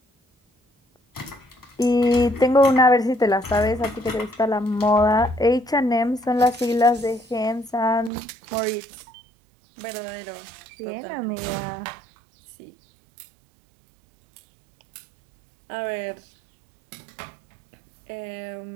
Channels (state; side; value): drops out; left; at 8.1 s